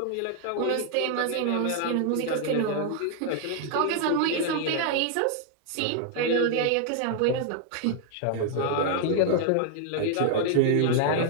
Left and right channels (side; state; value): both; different; correlation 0.00